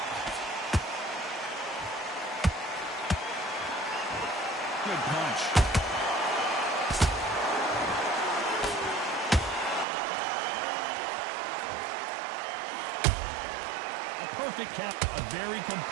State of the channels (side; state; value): left; drops out; at 9.9 s